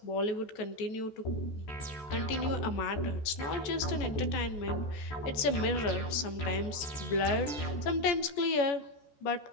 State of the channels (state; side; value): late; right; 14 ms